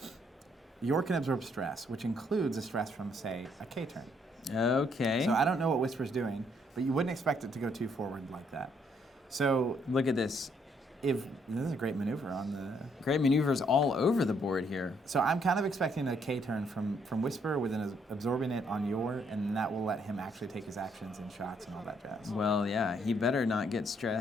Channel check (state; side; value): normal; both; correlation 0.70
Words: York can absorb stress, which includes a stress from, say, a K turn. Okay. So I don't know what Whisper's doing, but you wouldn't expect it to go too forward like that. So look at this. This is a great maneuver on the... Great maneuvers all over the board here. So I'm kind of expecting a K turn from Whisper within absorbing it on Yor, and that will let him actually take his actions and shots and all that jazz. Well, yeah, he better not get